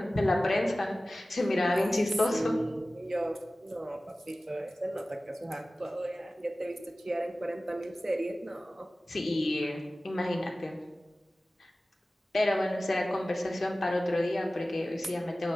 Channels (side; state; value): both; normal; correlation 0.97